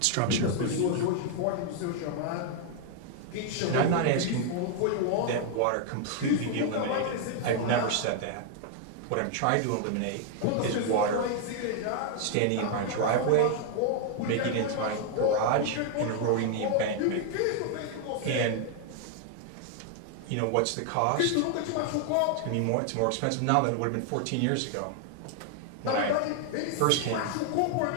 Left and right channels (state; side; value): different; both; correlation 0.00